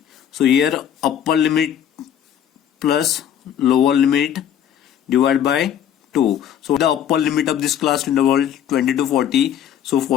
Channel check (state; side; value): quieter; right; 9.6 dB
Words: So here upper limit plus lower limit divided by 2. So the upper limit of this class interval 20 to 40. So